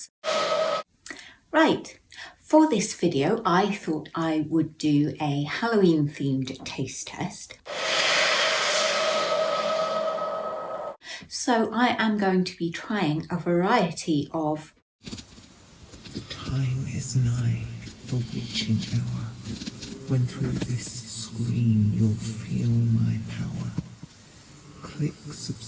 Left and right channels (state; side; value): identical; both; correlation 1.00